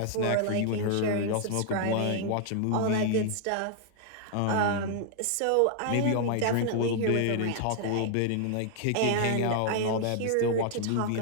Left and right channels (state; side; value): different; both; correlation -0.01